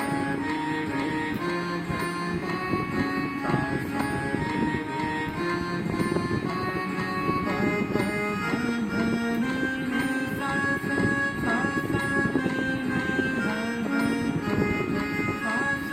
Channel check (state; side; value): identical; both; correlation 1.00